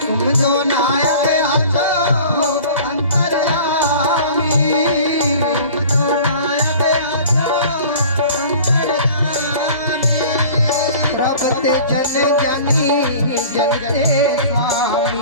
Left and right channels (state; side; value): inverted; both; correlation -0.43